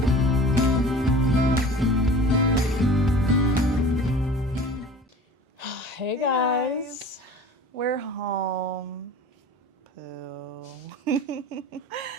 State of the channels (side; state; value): both; normal; correlation 0.42